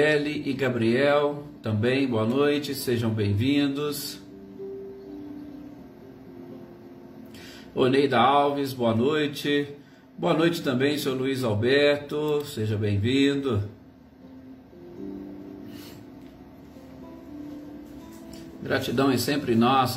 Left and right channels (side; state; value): both; identical; correlation 1.00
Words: e Gabriel, também boa noite, sejam bem-vindos, Oneida Alves, boa noite também, seu Luiz Alberto, seja bem-vindo, gratidão é sempre